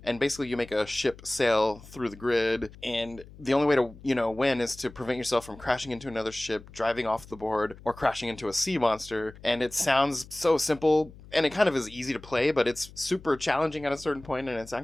and basically you make a ship sail through the grid, and the only way to, win is to prevent yourself from crashing into another ship, driving off the board, or crashing into a sea monster. And it sounds so simple, and it kind of is easy to play, but it's super challenging at a certain point, and it's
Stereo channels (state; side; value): noise; left; hum, 19 dB below the sound